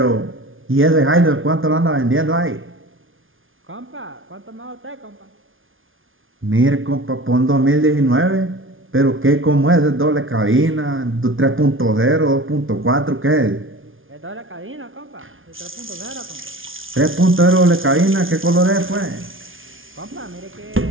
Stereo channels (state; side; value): late; left; 0.58 ms